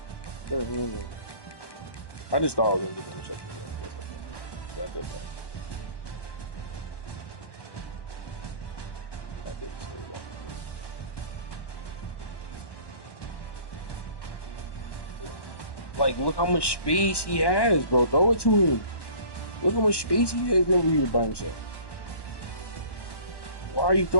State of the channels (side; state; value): right; late; 1.1 ms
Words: I just thought I was going to get the interception. I did that. I didn't say that. Like, look how much space he has, bro. Throw it to him. Look how much space he has over here by himself. Why are you